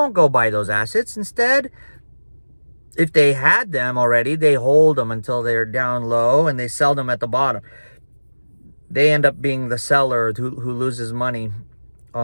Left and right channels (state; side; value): inverted; both; correlation -1.00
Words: go buy those assets. Instead, if they had them already, they hold them until they're down low and they sell them at the bottom. They end up being the seller who loses money